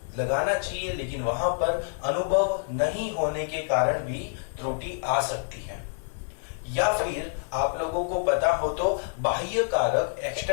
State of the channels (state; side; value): silent; right; 60 dB below the other